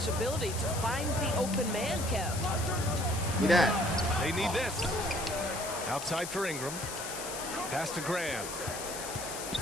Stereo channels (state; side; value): noise; left; hiss, 7 dB below the sound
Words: ability to find the open man, Kev? Look at that. They need this. Outside for Ingram. Pass to Graham.